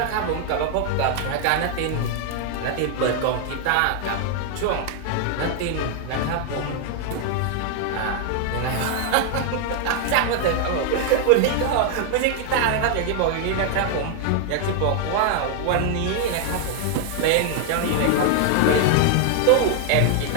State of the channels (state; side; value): different; both; correlation 0.00